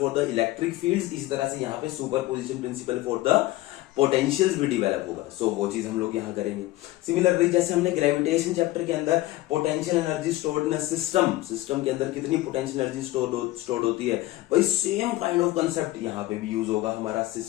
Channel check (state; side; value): quieter; right; 17.3 dB